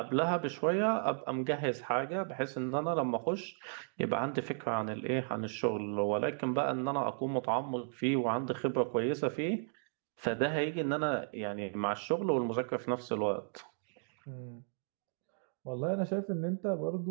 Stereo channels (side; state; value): left; silent; digital silence